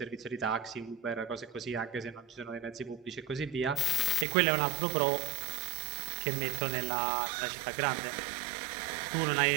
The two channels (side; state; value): left; drops out; at 4.2 s